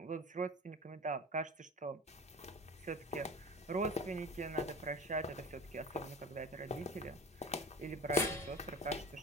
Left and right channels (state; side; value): normal; both; correlation 0.36